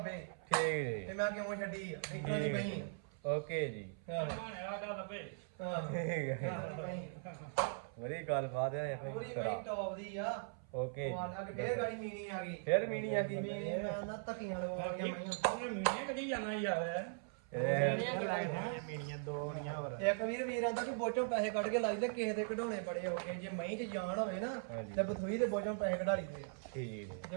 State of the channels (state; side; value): silent; left; 51 dB below the other